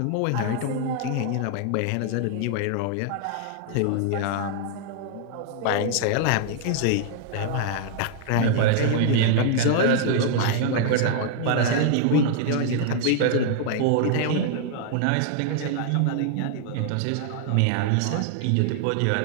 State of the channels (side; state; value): both; different; correlation 0.00